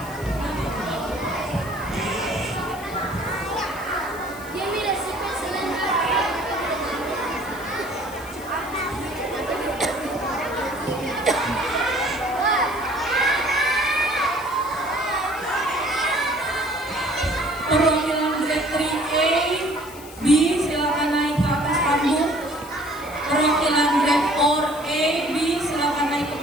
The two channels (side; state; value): left; noise; hiss, 18 dB below the sound